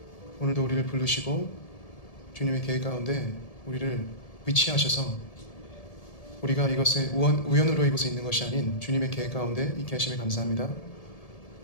오늘도 우리를 부르시고 주님의 계획 가운데 우리를 위치하셔서 우리가 이것에 우연으로 이곳에 있는 것이 아닌 주님의 계획 가운데 있게 하심에 감사합니다.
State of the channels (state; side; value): late; right; 1.7 ms